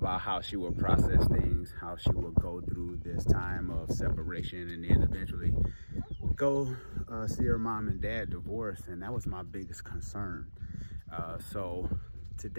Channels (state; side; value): inverted; both; correlation -1.00